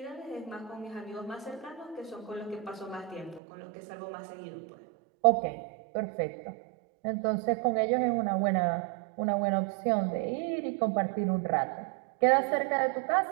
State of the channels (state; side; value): drops out; left; at 3.4 s